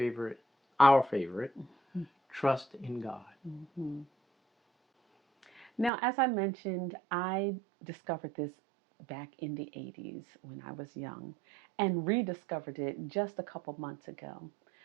our favorite, trust in God. Mhm. Now, as I mentioned, I discovered this back in the 80s when I was young and rediscovered it just a couple months ago.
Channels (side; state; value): left; drops out; at 5.9 s